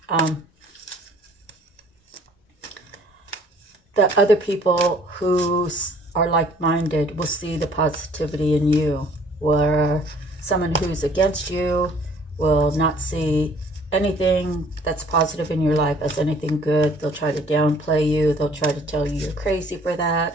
the other people who are like-minded will see the positivity in you, where someone who's against you will not see anything that's positive in your life as anything good. They'll try to downplay you. They'll try to tell you you're crazy for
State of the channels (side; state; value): both; normal; correlation 0.57